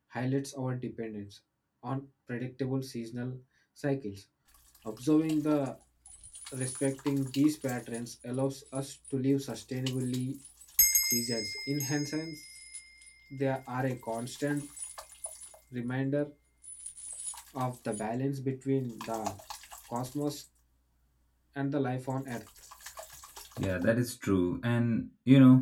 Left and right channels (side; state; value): both; identical; correlation 1.00